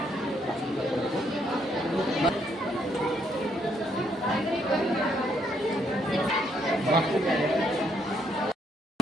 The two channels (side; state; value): both; normal; correlation 0.72